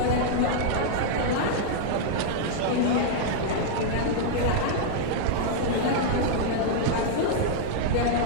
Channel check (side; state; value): both; different; correlation -0.01